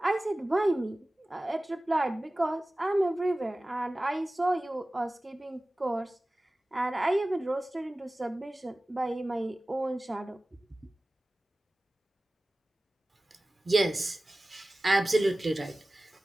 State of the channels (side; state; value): both; normal; correlation 0.97